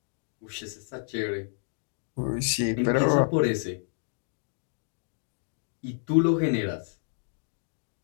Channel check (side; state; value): right; silent; digital silence